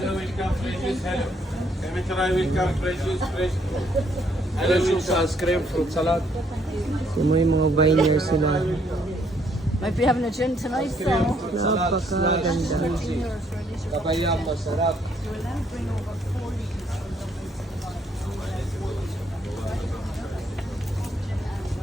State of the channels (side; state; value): both; normal; correlation 0.69